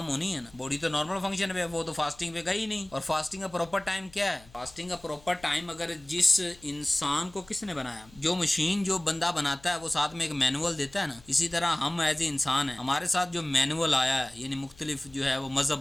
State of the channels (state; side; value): noise; left; hum, 25 dB below the sound